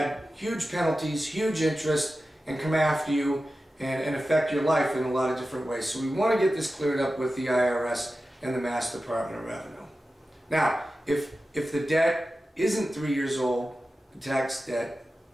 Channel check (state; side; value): normal; both; correlation 0.94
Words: huge penalties, huge interest, and come after you and affect your life in a lot of different ways. So we want to get this cleared up with the IRS and the Mass Department of Revenue. Now, if the debt isn't 3 years old, the tax debt,